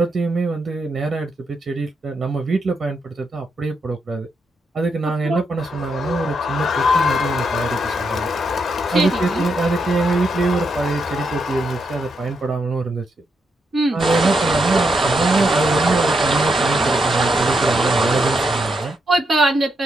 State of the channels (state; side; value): normal; both; correlation 0.81